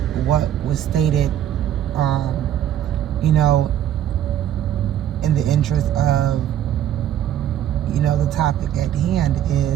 what was stated, in the interest of, the topic at hand,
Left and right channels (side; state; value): left; quieter; 11.0 dB